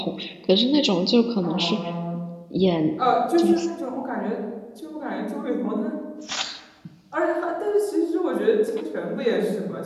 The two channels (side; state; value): both; identical; correlation 1.00